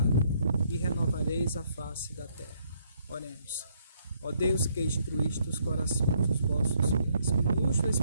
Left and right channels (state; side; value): inverted; both; correlation -0.70